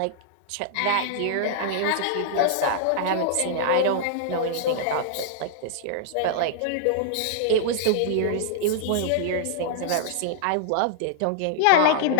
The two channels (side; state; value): both; different; correlation -0.01